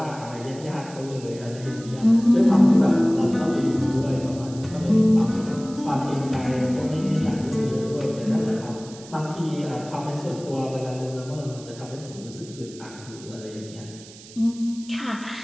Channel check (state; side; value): noise; right; hiss, 19 dB below the sound